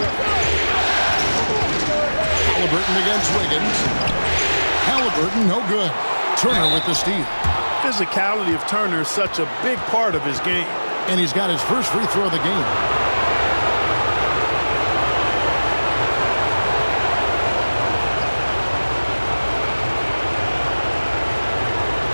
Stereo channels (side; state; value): both; inverted; correlation -1.00